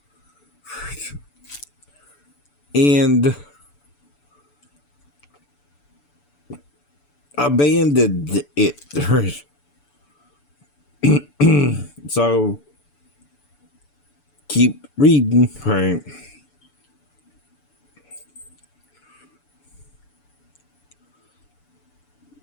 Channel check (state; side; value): late; right; 6.9 ms